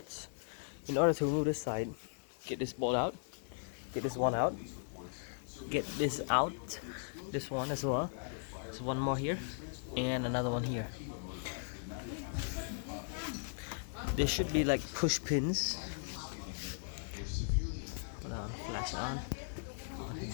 In order to remove this side, get this bolt out, get this one out, get this out, this one as well. There's one more here and another one here. There should be like push pins. Hold on, flash it on.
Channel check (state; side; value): silent; right; digital silence